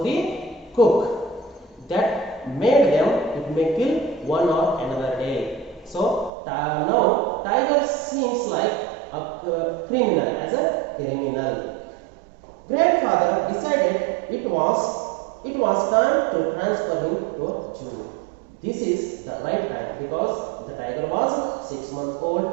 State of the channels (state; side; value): drops out; left; at 6.3 s